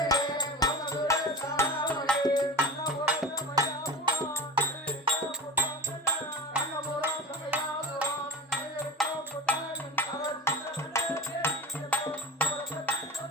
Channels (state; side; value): normal; both; correlation 0.31